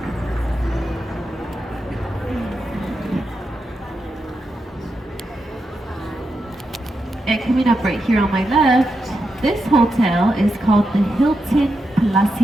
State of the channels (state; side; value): normal; both; correlation 0.86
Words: And coming up right here on my left, this hotel is called the Hilton